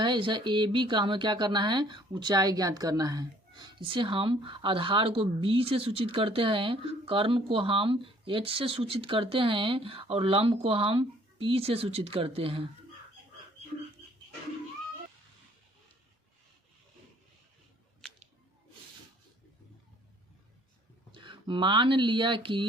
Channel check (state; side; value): normal; both; correlation 0.59